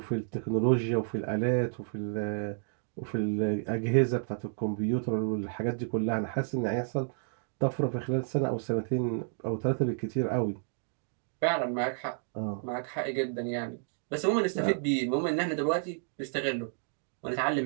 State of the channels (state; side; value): silent; left; digital silence